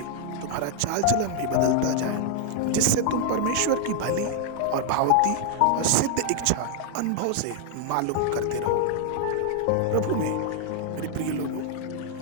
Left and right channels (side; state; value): both; different; correlation 0.00